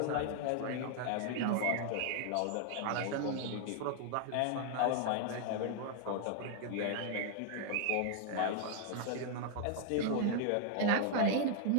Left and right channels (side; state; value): both; different; correlation 0.00